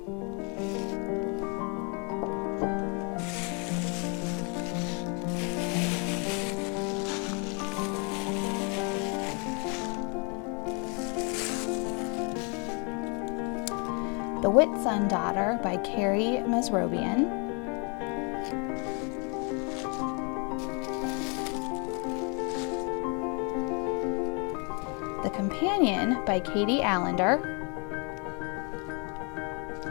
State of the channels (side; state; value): right; quieter; 34.5 dB